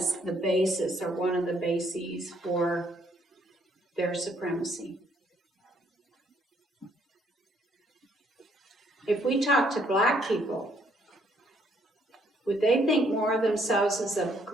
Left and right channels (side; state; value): both; normal; correlation 0.68